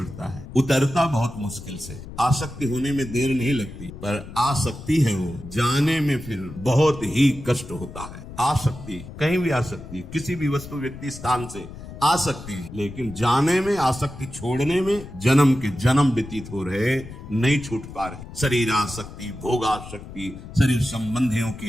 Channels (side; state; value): left; noise; rumble, 13 dB below the sound